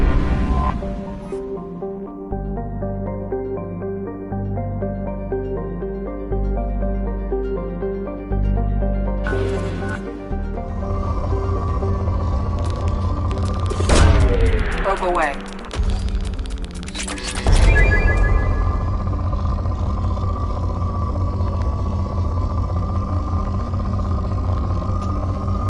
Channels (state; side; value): identical; both; correlation 1.00